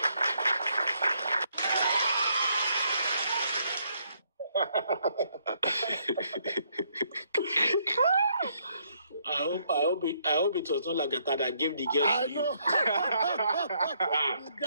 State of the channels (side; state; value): both; inverted; correlation -0.71